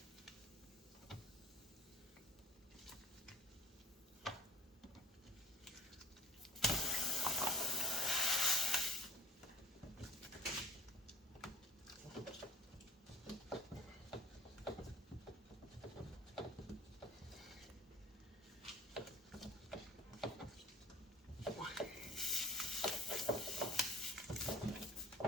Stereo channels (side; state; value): both; normal; correlation 0.47